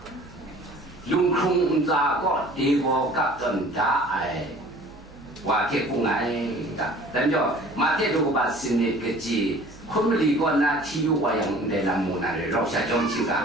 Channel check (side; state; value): right; noise; hum, 22 dB below the sound